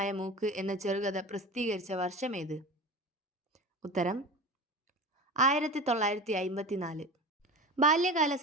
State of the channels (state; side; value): normal; both; correlation 0.31